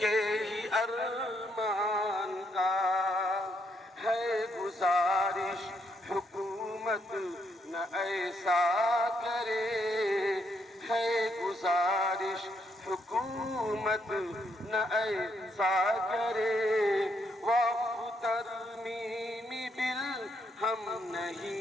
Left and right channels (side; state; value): both; normal; correlation 0.75